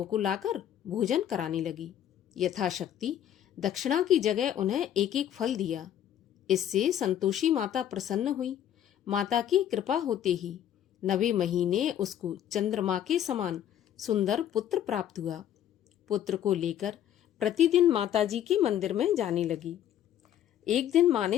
को लाकर भोजन कराने लगी। यथाशक्ति दक्षिणा की जगह उन्हें एक एक फल दिया। इससे संतोषी माता प्रसन्न हुई। माता की कृपा होते ही 9वें महीने उसको चंद्रमा के समान सुंदर पुत्र प्राप्त हुआ। पुत्र को लेकर प्रतिदिन माताजी के मंदिर में जाने लगी। एक दिन माँ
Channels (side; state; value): right; quieter; 10.7 dB